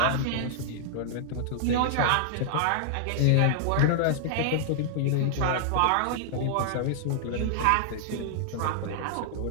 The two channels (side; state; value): both; different; correlation -0.01